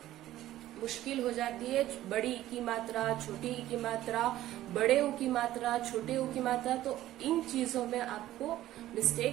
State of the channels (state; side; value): quieter; left; 14.2 dB